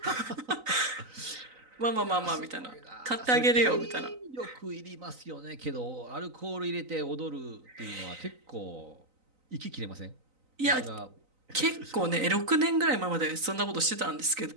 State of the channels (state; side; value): late; left; 3.9 ms